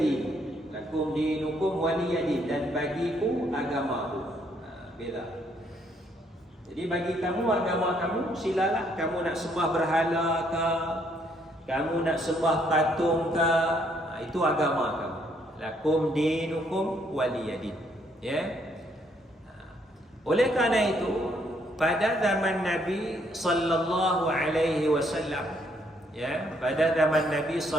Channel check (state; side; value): normal; both; correlation 0.70